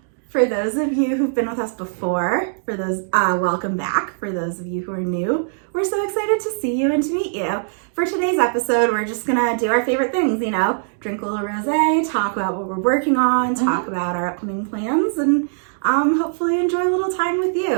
For those of you who've been with us before, welcome back. For those of you who are new, we're so excited to see you and to meet you. For today's episode, we're just gonna do our favorite things, drink a little rosé, talk about what we're working on, talk about our upcoming plans, and hopefully enjoy a little time with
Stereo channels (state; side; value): silent; left; digital silence